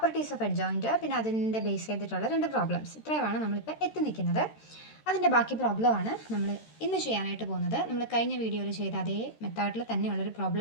ഓഫ് അഡ്ജോയിൻ്റ്, പിന്നെ അതിൻ്റെ ബേസ് ചെയ്തിട്ടുള്ള 2 പ്രോബ്ലംസ്. ഇത്രയുമാണ് നമ്മളിപ്പോൾ എത്തി നിൽക്കുന്നത്. അതിൻ്റെ ബാക്കി പ്രോബ്ലമാണ് നമ്മൾ ഇന്ന് ചെയ്യാനായിട്ട് പോകുന്നത്. നമ്മൾ കഴിഞ്ഞ വീഡിയോയിൽ ചെയ്ത അതേ മെത്തേഡിൽ തന്നെയുള്ളൊരു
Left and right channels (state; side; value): late; right; 13 ms